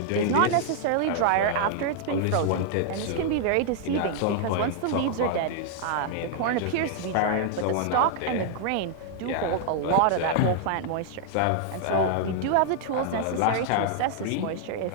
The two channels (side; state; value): both; different; correlation -0.01